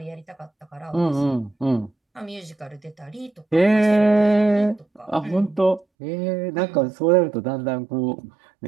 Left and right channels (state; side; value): drops out; left; at 5.9 s